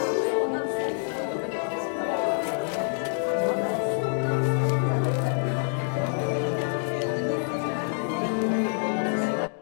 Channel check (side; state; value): right; silent; digital silence